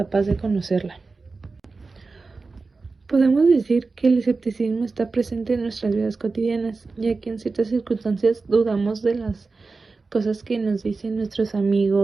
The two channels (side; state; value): left; quieter; 4.0 dB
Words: de conocerla. Podemos decir que el escepticismo está presente en nuestras vidas cotidianas, ya que en ciertas circunstancias dudamos de las cosas que nos dicen nuestros